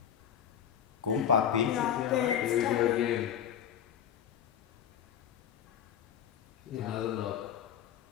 Go on, papi. yeah, there Here we it's go done. again. Yeah. Another knock.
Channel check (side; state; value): right; quieter; 9.2 dB